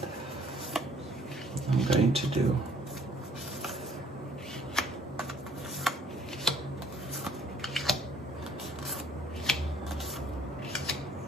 I'm going to do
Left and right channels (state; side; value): normal; both; correlation 0.60